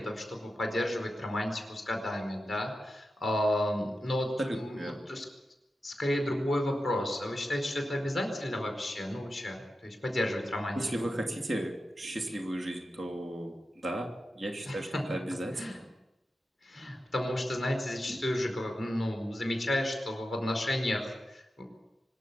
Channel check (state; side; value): normal; both; correlation 0.91